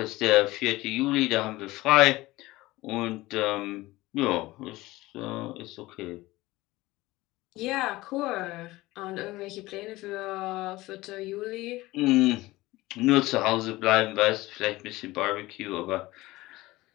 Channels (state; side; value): quieter; right; 19.1 dB